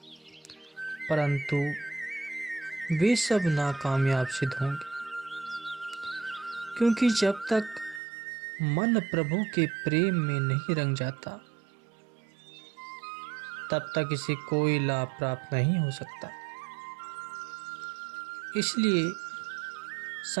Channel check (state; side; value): drops out; left; at 8.0 s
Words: परंतु वे सब नाकामयाब सिद्ध होंगे, क्योंकि जब तक मन प्रभु के प्रेम में नहीं रंग जाता तब तक इसे कोई लाभ प्राप्त नहीं हो सकता। इसलिए